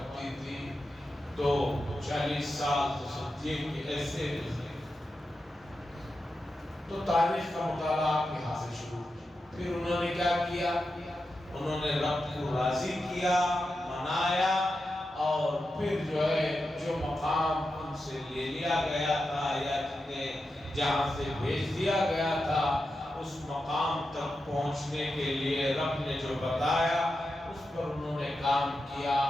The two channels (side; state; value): both; normal; correlation 0.89